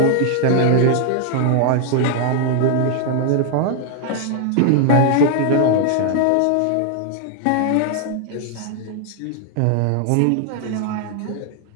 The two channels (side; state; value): both; different; correlation 0.00